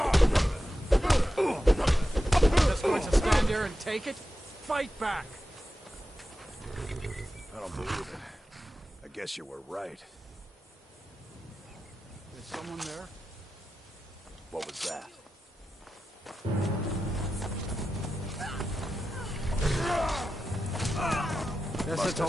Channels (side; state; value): both; normal; correlation 0.92